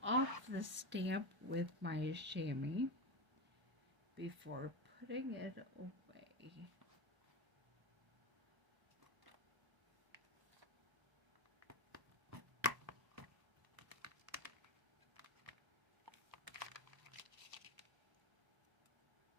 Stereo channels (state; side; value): late; left; 1.0 ms